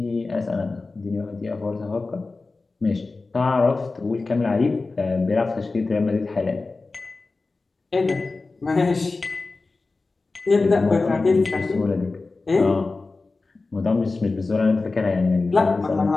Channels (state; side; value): quieter; right; 3.7 dB